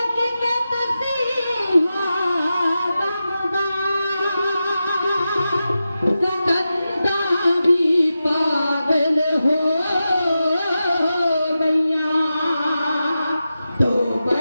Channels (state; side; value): inverted; both; correlation -0.92